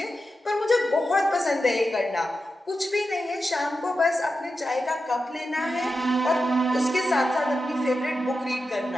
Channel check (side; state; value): both; normal; correlation 0.90